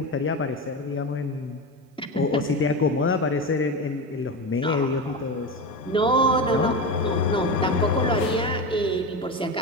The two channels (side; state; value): both; normal; correlation 0.21